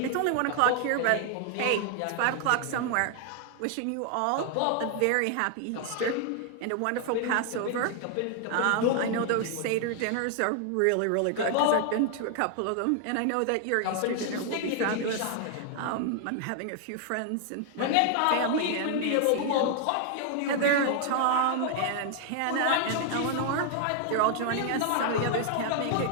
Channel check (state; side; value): different; both; correlation 0.00